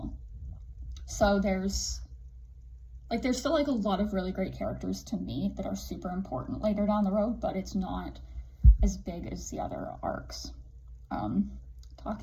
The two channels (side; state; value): both; identical; correlation 1.00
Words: So there's still like a lot of really great characters to meet that are super important later down the road, but it's not as big as the other arcs.